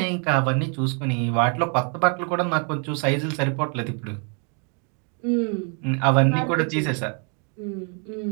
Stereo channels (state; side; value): quieter; left; 38.9 dB